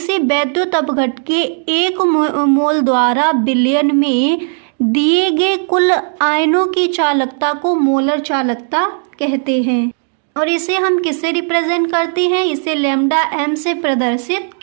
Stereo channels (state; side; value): silent; left; 58 dB below the other